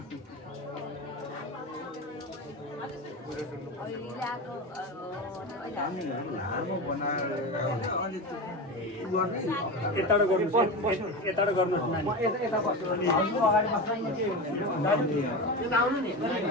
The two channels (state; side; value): normal; both; correlation 0.23